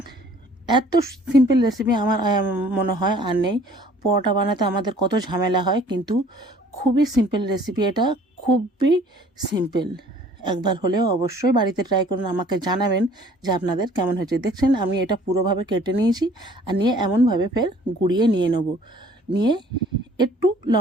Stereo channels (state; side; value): normal; both; correlation 0.55